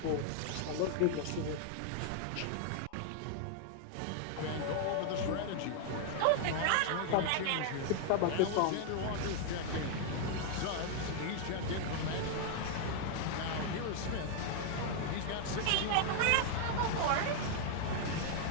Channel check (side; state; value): both; different; correlation 0.00